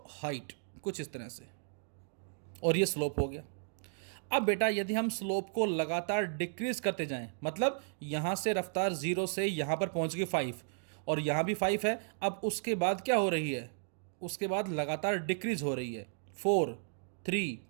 हाइट कुछ इस तरह से, और ये स्लोप हो गया। अब बेटा यदि हम स्लोप को लगातार डिक्रीज करते जाएं, मतलब यहाँ से रफ्तार 0 से यहाँ पर पहुँच गई 5 और यहाँ भी 5 है, अब उसके बाद क्या हो रही है? उसके बाद लगातार डिक्रीज हो रही है 4 3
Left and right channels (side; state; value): left; silent; digital silence